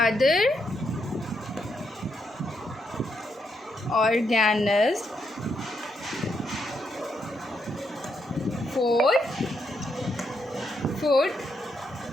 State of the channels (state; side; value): normal; both; correlation 0.79